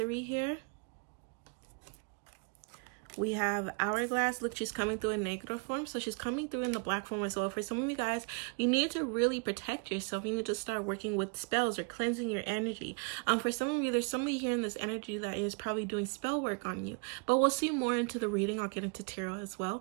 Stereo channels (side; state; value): left; quieter; 34.4 dB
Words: here. We have hourglass. Look, she's coming through in negro form, so she's coming through in the black form as well. For some of you guys, you need to really protect yourself. You need to start working with spells or cleansing your energy. For some of you, there's somebody here in this energy that is probably doing spell work on you, but we'll see more into the reading. I'll get into tarot as